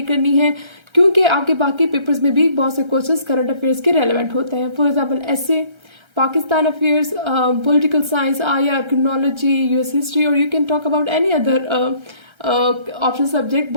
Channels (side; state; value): left; late; 1.3 ms